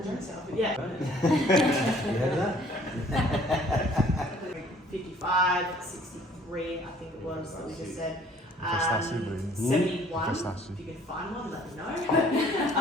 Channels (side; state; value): both; normal; correlation 0.57